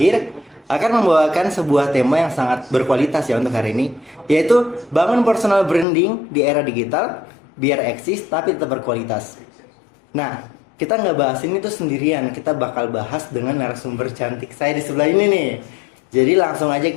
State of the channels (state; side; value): drops out; right; at 5.9 s